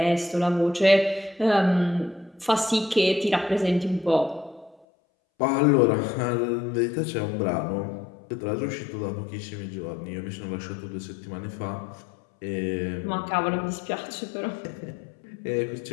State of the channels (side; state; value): right; drops out; at 4.9 s